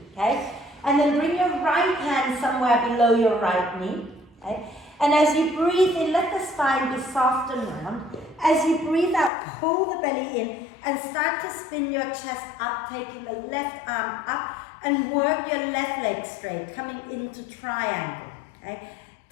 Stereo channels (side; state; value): right; drops out; at 9.3 s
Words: Okay? And then bring your right hand somewhere below your right knee. Okay? And as you breathe in, let the spine be soft and round. As you breathe out, pull the belly in and start to spin your chest up, taking the left arm up and work your left leg straight, coming into triangle. Okay?